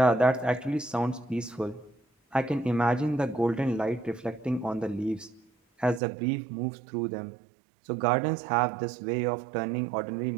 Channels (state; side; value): drops out; left; at 6.0 s